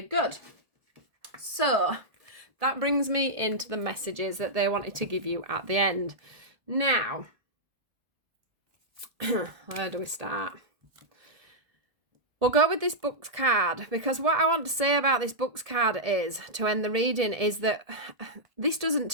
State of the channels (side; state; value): left; late; 1.8 ms